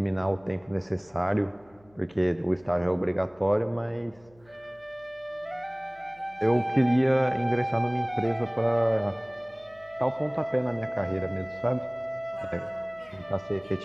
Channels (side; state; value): left; noise; hum, 29 dB below the sound